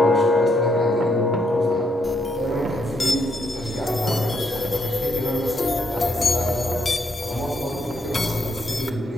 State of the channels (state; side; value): normal; both; correlation 0.76